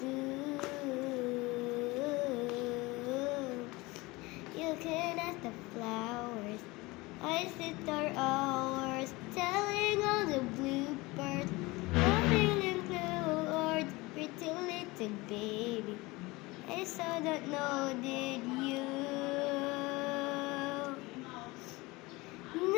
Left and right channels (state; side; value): quieter; right; 22.5 dB